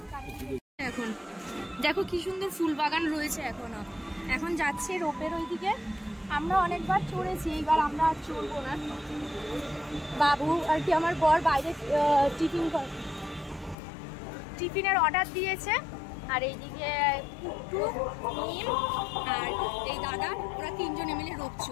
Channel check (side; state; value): right; drops out; at 13.8 s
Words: এখন দেখো কি সুন্দর ফুল বাগান রয়েছে এখনো। এখন যাচ্ছে রোপের ওইদিকে। আমরা অনেকবার চড়েছি, এইবার আমরা আর চড়বো না। বাবু আর কি আমার বর বাইরে টিফিনের অর্ডার দিয়েছে। আর এইদিকে পুট্টু, মিম আর এই দাদা, ওরা তিনজনে মিলে রোপ